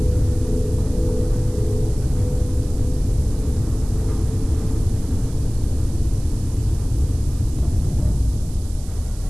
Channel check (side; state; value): right; noise; hiss, 20 dB below the sound